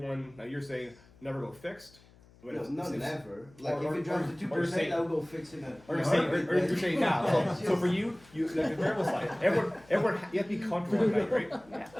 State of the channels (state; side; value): noise; left; hum, 26 dB below the sound